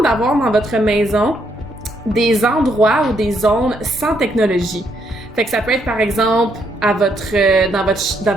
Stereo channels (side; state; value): both; normal; correlation 0.74